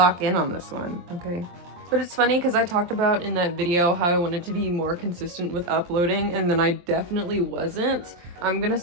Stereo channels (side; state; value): left; late; 23 ms